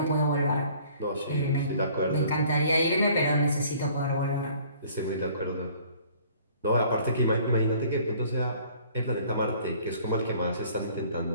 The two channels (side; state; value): both; inverted; correlation -0.55